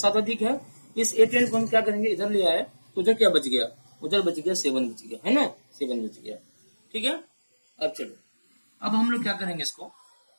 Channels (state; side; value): inverted; both; correlation -1.00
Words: अधिक है। इस A10 को हम क्या करेंगे, इधर ले आए, तो उधर क्या बच गया, उधर बच गया 7 बच गया, है ना, 7 बच गया, ठीक है। अब चलो, अब हम लोग क्या करेंगे, इसको